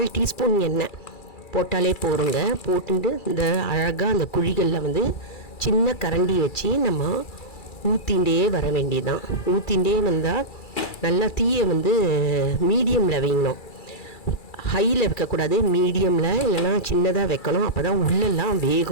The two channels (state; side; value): late; right; 2.3 ms